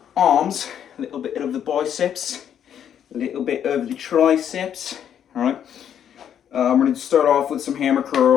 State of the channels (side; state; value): right; quieter; 9.3 dB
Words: arms, a little bit of the biceps, a little bit of the triceps. Alright, I'm going to start off with some hammer